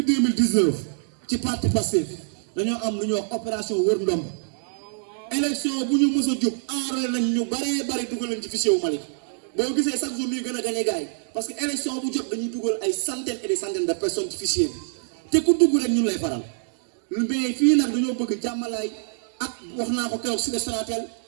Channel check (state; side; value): silent; left; digital silence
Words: 2019 ci parti Pastef dañoo am lu ñuy wax opération wër ndomb élection bu ñu mës a jóg enrôlé nañ ñu bari dugal nañ ci fichier wu Malick boo gisee chaque jour ñuy gën a gagné gars yi parce que élection bu jot dañuy dugal ay centaines et des centaines de personnes ci fichier bi te ku dugg rek ñun lay faral mais fii nag dañoo bëgg jàmmalaay ak wax naa ko keroog si Sonatel